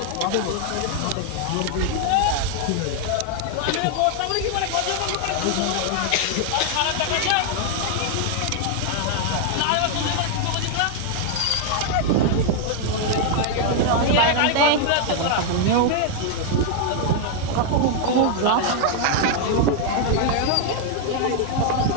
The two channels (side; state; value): both; different; correlation 0.00